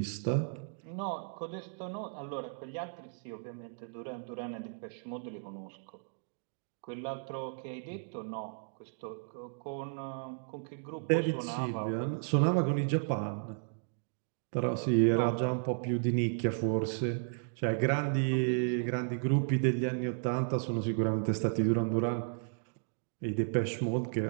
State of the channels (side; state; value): left; silent; digital silence